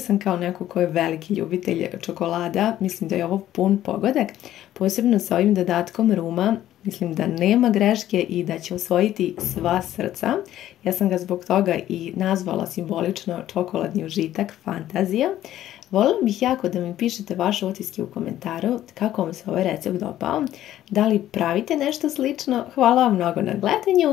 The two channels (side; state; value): right; quieter; 12.9 dB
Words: kao neko ko je veliki ljubitelj čokolada. Mislim da je ovo pun pogodak, posebno sa ovim dodatkom ruma. Mislim da nema greške i da će osvojiti sva srca. Ja sam ga zbog toga i nazvala simbolično čokoladni užitak, fantazija. Voljela bih jako da mi pišete vaše utiske u komentaru kako vam se ovaj recept dopao, da li pravite nešto slično. Hvala vam mnogo na